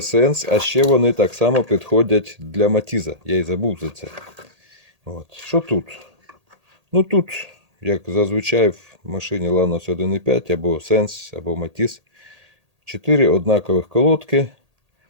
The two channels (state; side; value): late; left; 1.8 ms